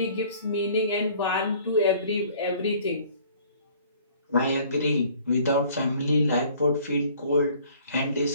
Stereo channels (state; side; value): inverted; both; correlation -0.54